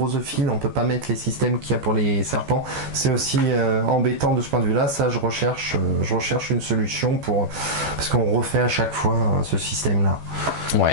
on peut pas mettre les systèmes qu'il y a pour les serpents. C'est aussi embêtant de ce point de vue-là. Ça, je recherche une solution parce qu'on refait à chaque fois ce système-là.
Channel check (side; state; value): left; late; 14 ms